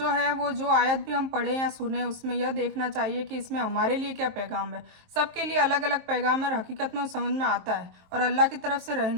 है वो जो आयत भी हम पढ़ें या सुने उसमें यह देखना चाहिए कि इसमें हमारे लिए क्या पैगाम है। सबके लिए अलग अलग पैगाम है, हकीकत में समझ में आता है और अल्लाह की तरफ से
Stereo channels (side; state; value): left; late; 23 ms